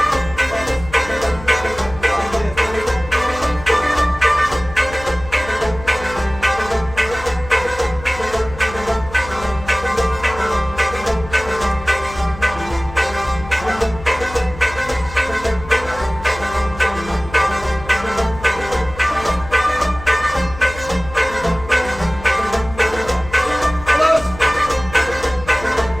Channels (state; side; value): noise; left; hum, 15 dB below the sound